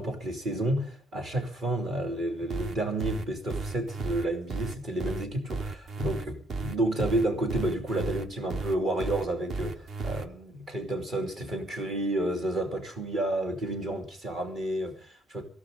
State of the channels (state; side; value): normal; both; correlation 0.67